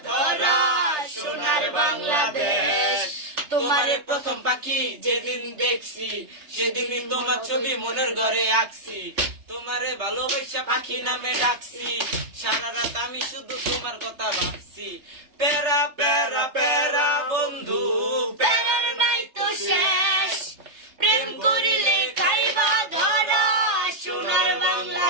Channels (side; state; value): left; late; 3.3 ms